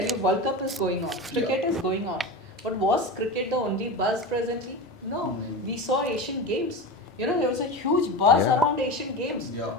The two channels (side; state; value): both; normal; correlation 0.25